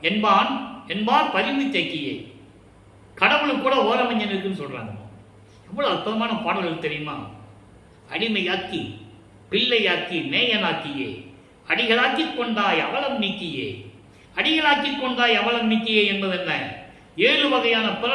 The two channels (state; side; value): identical; both; correlation 1.00